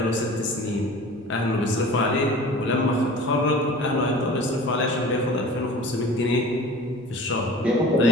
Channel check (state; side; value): noise; right; rumble, 27 dB below the sound